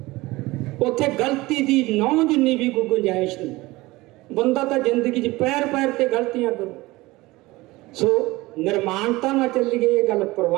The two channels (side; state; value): left; quieter; 20.3 dB